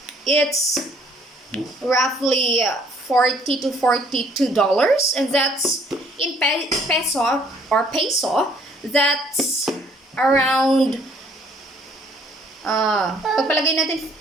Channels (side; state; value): both; normal; correlation 0.62